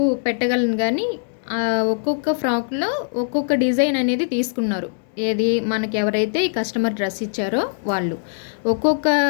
పెట్టగలను, కానీ ఒక్కొక్క ఫ్రాక్లో ఒక్కొక్క డిజైన్ అనేది తీసుకున్నారు. ఏది మనకి ఎవరైతే ఈ కస్టమర్ డ్రెస్ ఇచ్చారో వాళ్ళు ఒక్కొక్క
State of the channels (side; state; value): right; silent; 65 dB below the other